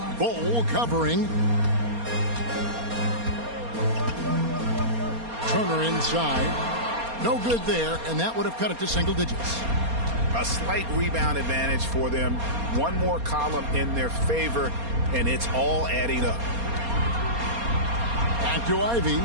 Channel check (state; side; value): late; left; 4.3 ms